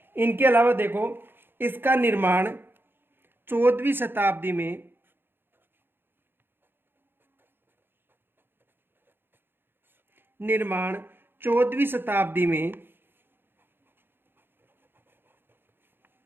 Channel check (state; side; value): late; left; 0.10 ms